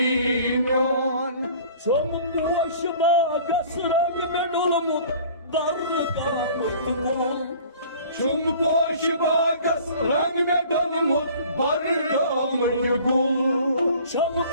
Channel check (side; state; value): both; inverted; correlation -0.49